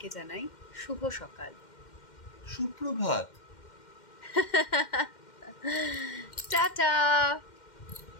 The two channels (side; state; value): right; late; 2.1 ms